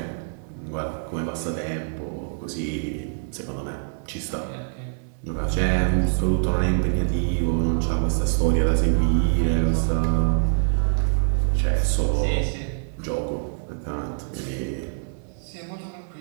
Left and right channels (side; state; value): left; silent; 62 dB below the other